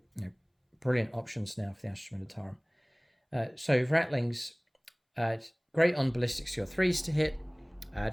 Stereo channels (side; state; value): both; identical; correlation 1.00